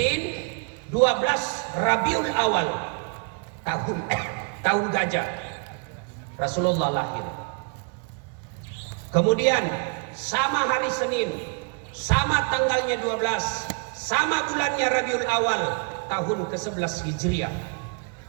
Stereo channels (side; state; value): left; quieter; 36.1 dB